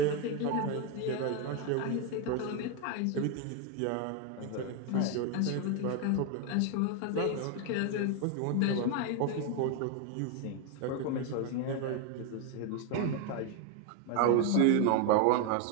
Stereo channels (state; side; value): different; both; correlation 0.01